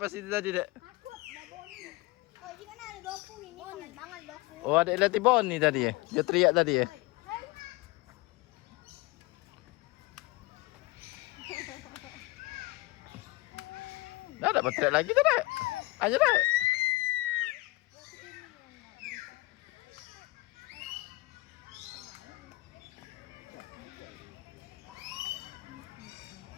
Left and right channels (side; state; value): right; quieter; 21.5 dB